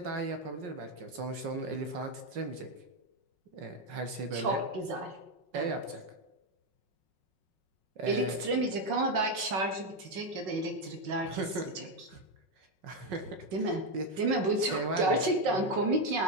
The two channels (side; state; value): left; late; 5.4 ms